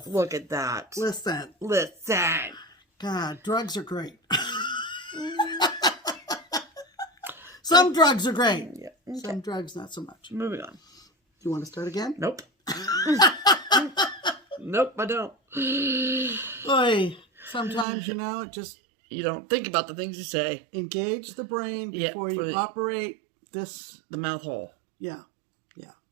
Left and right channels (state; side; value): drops out; left; at 17.9 s